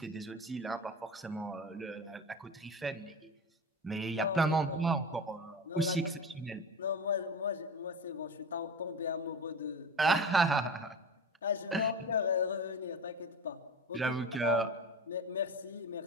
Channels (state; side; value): normal; both; correlation 0.30